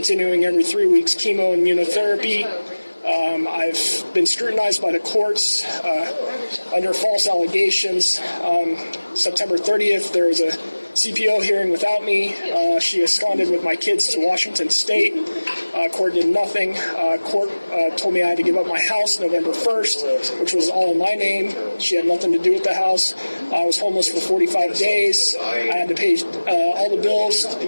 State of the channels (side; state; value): both; inverted; correlation -1.00